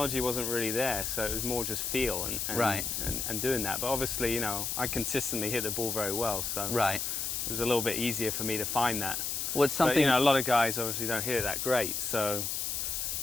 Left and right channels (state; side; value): noise; left; hiss, 2 dB below the sound